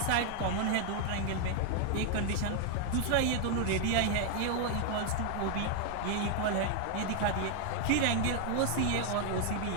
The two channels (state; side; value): different; both; correlation 0.00